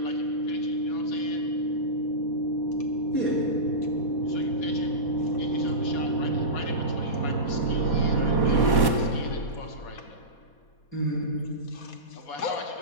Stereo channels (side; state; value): right; late; 4.2 ms